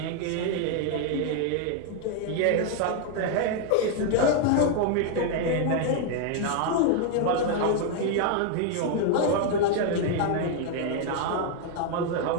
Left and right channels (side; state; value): both; different; correlation 0.00